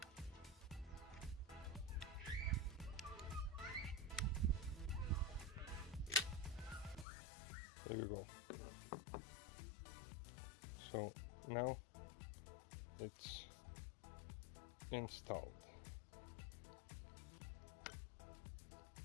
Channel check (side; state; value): right; drops out; at 7.1 s